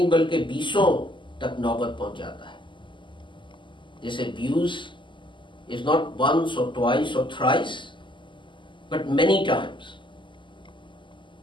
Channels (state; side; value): late; right; 0.24 ms